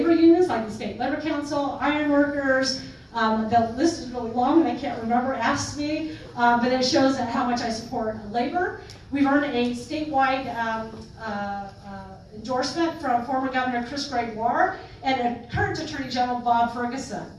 unions like the State Labor Council, ironworkers. The list is really long and I can't remember, ask me, but it shows how much I support labor. We've earned a statewide endorsement from former Governor Chris Gregoire and current Attorney General Bob Ferguson.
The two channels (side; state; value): both; identical; correlation 1.00